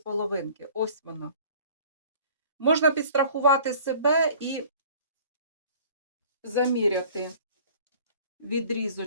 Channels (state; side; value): inverted; both; correlation -0.49